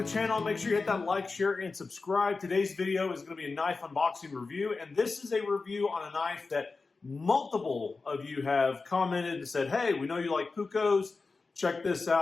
the channel. Make sure you hit that like, share, and subscribe. Today's video is going to be a knife unboxing review, and this is a review on a knife that multiple of you have commented and said, hey, we know you like Puukkos, check this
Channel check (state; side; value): quieter; right; 4.1 dB